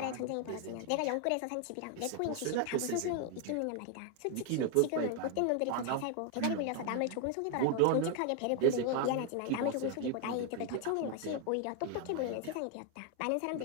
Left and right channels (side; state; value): both; different; correlation 0.01